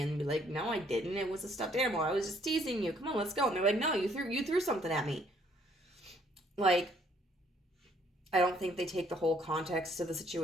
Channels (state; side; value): normal; both; correlation 0.65